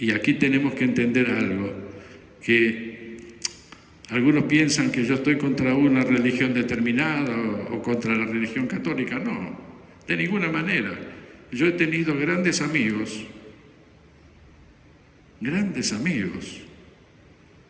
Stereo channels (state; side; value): identical; both; correlation 1.00